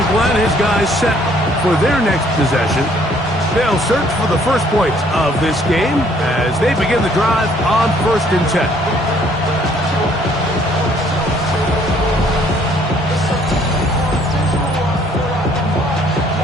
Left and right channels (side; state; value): both; normal; correlation 0.63